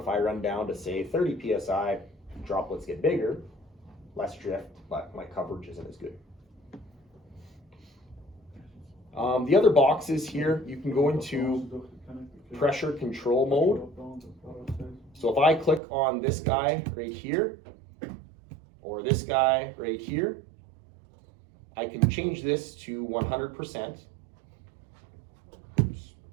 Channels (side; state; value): left; drops out; at 15.8 s